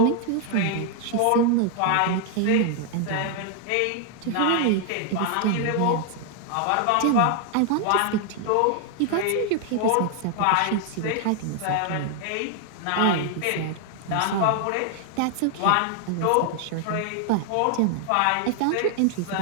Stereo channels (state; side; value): different; both; correlation 0.00